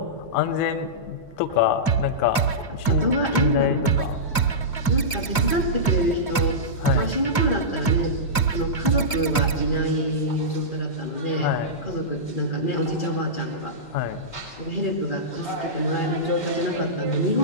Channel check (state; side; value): late; right; 2.4 ms